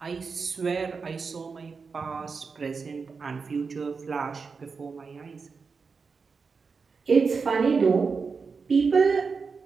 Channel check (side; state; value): left; quieter; 5.0 dB